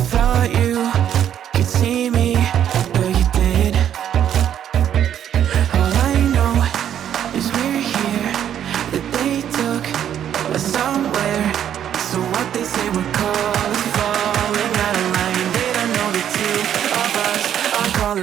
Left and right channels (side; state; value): left; quieter; 9.9 dB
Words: you could see me, but you did. All I know is we're here, that they took us somewhere. So what they say we're called is falling out of line. They don't know the two of us are